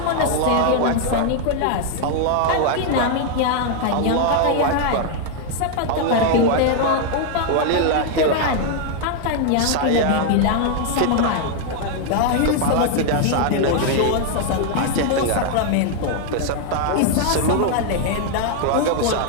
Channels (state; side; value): different; both; correlation 0.00